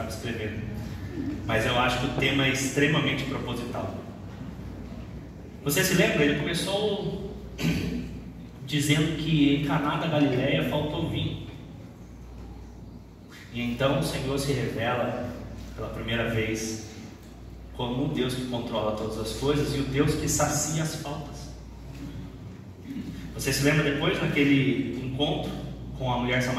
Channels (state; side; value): identical; both; correlation 1.00